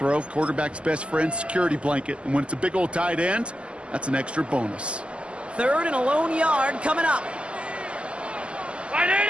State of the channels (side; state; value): left; late; 0.054 ms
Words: quarterback's best friend, security blanket. And when it's a big old tight end, that's an extra bonus. 3rd and a lone yard coming up.